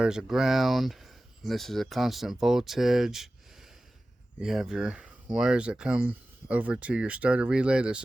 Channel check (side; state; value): both; normal; correlation 0.96